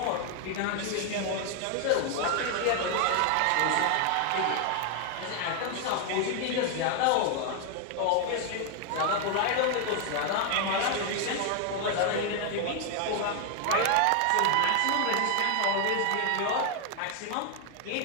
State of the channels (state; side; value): different; both; correlation 0.00